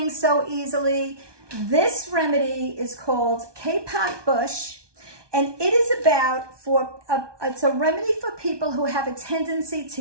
so easily. This remedy is called K-Pot Bush, and it is about it's a remedy for people who have a tendency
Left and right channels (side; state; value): left; late; 1.2 ms